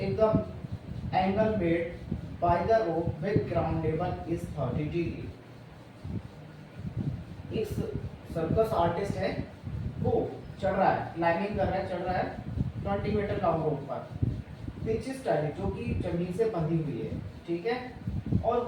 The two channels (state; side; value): identical; both; correlation 1.00